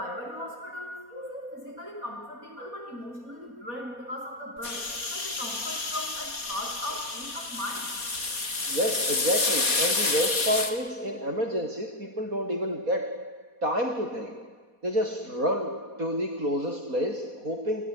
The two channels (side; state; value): left; late; 4.2 ms